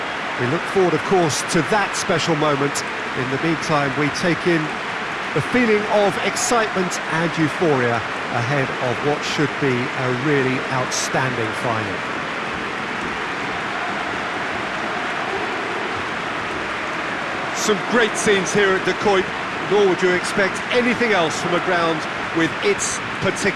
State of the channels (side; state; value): both; identical; correlation 1.00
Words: We look forward, of course, to that special moment. In the meantime, we take in the feeling of excitement and euphoria ahead of what should be a really outstanding final. Some great scenes here at De Kuip, nor would you expect anything else from a ground with its